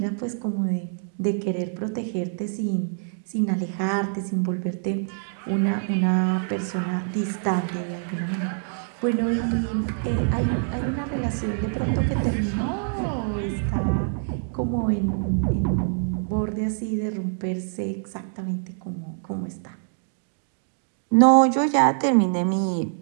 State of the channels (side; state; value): left; silent; digital silence